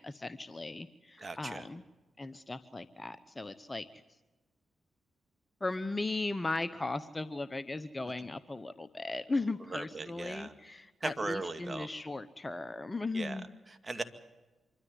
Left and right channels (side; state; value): both; normal; correlation 0.95